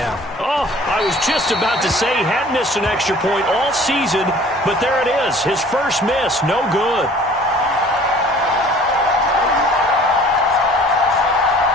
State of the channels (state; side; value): normal; both; correlation 0.50